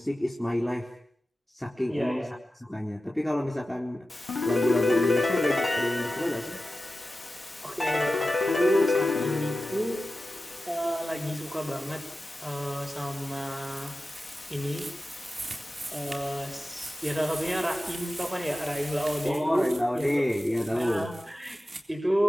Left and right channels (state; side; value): normal; both; correlation 0.94